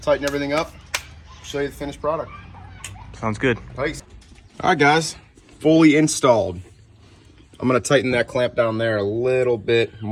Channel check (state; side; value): identical; both; correlation 1.00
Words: tighten everything up, show you the finished product. Sounds good. Nice. All right, guys, fully installed. I'm gonna tighten that clamp down there a little bit